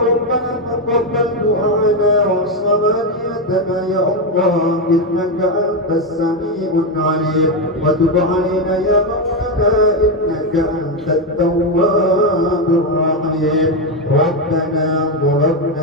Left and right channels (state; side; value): normal; both; correlation 0.07